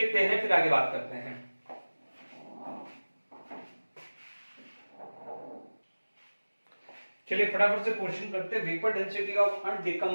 हैं फिर आगे बात करते हैं। चलिए फटाफट से क्वेश्चन करते हैं। Vapour density of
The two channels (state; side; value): inverted; both; correlation -1.00